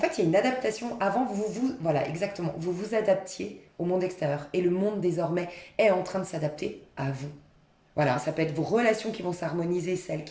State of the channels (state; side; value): identical; both; correlation 1.00